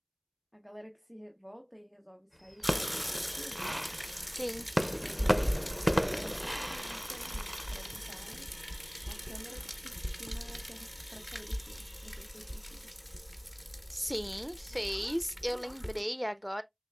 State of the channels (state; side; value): identical; both; correlation 1.00